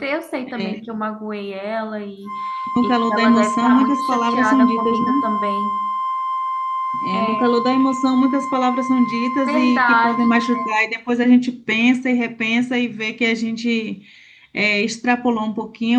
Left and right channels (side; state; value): both; identical; correlation 1.00